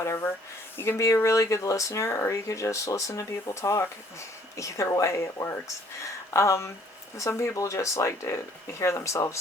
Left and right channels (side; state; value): both; normal; correlation 0.60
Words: You can be a really good listener, or you could just listen to people talk. Either way, it works. Some people just like to hear